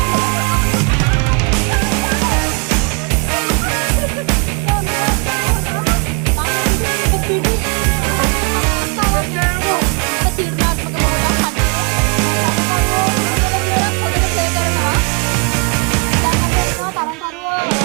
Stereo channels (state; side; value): quieter; left; 33.7 dB